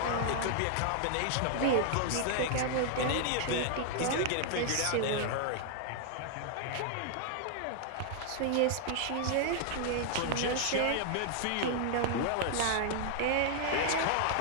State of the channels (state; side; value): different; both; correlation 0.00